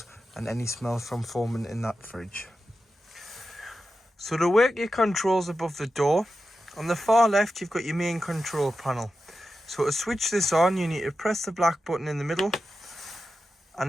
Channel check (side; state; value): both; normal; correlation 0.91